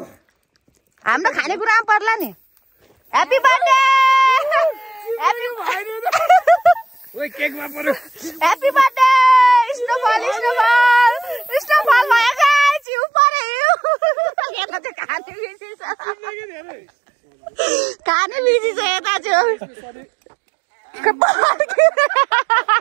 हाम्रो खानेकुरामा पर्ला नि ह्याप्पी बर्थडे केकमा पर्यो ह्याप्पी बर्थडे स्नोफल भयो जिउ पर्यो यता चाहिँ खाने बिजी छ यता चाहिँ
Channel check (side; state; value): left; drops out; at 12.8 s